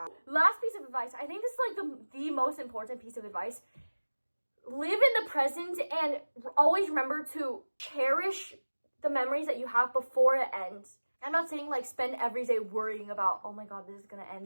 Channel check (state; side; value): inverted; both; correlation -1.00